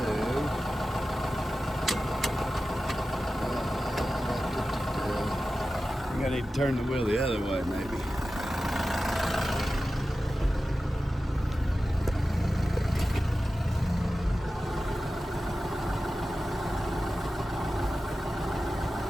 I think I need to turn the wheel the other way maybe.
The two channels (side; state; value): both; normal; correlation 0.94